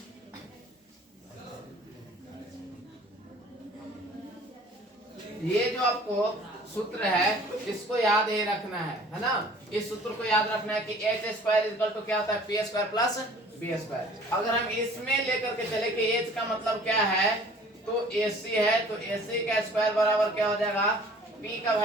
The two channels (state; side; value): normal; both; correlation 0.50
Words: ये जो आपको सूत्र है इसको याद ही रखना है ना? इस सूत्र को याद रखना है कि एच स्क्वायर इक्वल टू क्या होता है? P square plus B square. अगर हम इसमें लेकर के चले कि एच का मतलब क्या है, तो एसी है, तो एसी का स्क्वायर बराबर क्या हो जाएगा? पी का